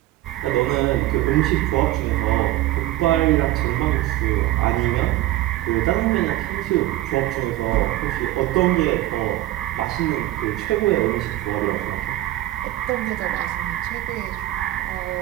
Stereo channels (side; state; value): left; quieter; 15.6 dB